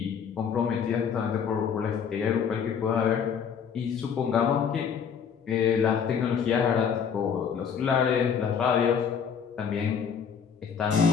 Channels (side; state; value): right; quieter; 7.1 dB